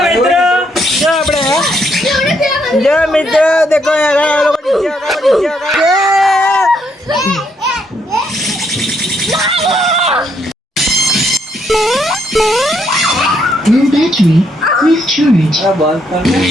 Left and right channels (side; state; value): both; normal; correlation 0.74